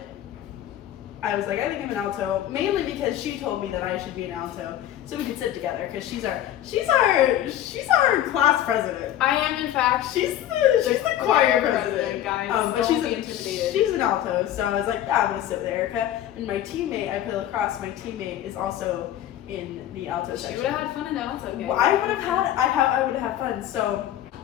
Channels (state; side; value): quieter; right; 12.1 dB